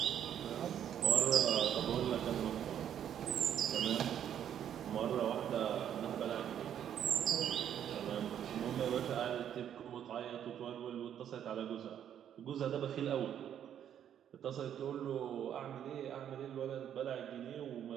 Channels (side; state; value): left; quieter; 9.7 dB